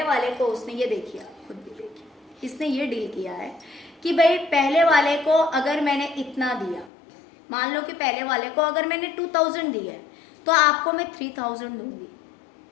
वाले को उसने ये देखिए, खुद भी देखिए, इसने ये डील किया है कि भाई पहले वाले को अगर मैंने इतना दिया, मान लो कि पहले वाले को अगर मैंने 2000 दिया है, तो आपको मैं 3000 दूंगी,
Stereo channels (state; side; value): drops out; right; at 6.9 s